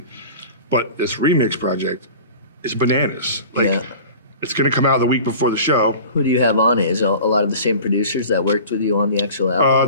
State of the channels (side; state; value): both; inverted; correlation -0.40